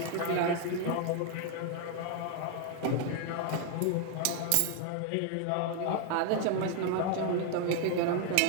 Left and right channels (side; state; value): both; different; correlation 0.00